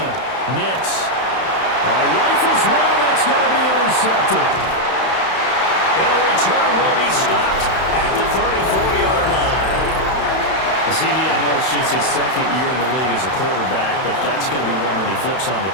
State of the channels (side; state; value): right; late; 31 ms